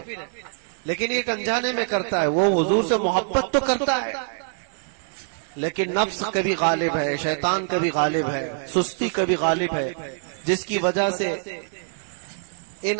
لیکن ایک انجانے میں کرتا ہے، وہ حضور سے محبت تو کرتا ہے لیکن نفس کبھی غالب ہے، شیطان کبھی غالب ہے، سستی کبھی غالب ہے، جس کی وجہ سے ان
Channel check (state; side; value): silent; left; digital silence